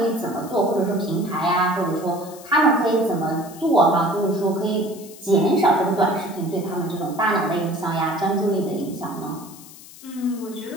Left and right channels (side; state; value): left; noise; hiss, 19 dB below the sound